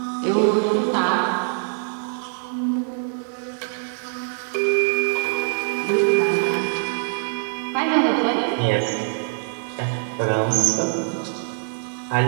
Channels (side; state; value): left; silent; digital silence